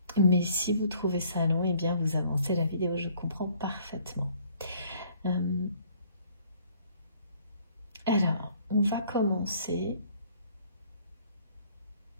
Mais si vous trouvez ça long, eh bien, vous avancez la vidéo, je comprends parfaitement. Alors, on va commencer.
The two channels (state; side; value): inverted; both; correlation -0.59